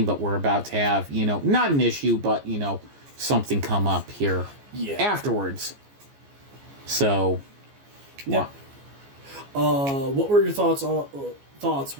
but we're about to have, not an issue, but, something come up here afterwards. So, yeah. What were your thoughts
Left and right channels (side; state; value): left; late; 14 ms